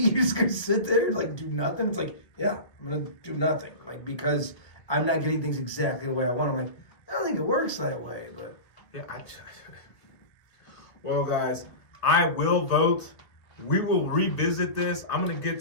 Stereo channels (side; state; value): right; late; 1.7 ms